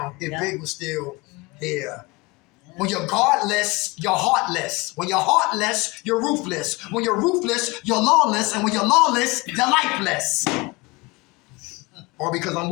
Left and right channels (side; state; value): right; quieter; 24.5 dB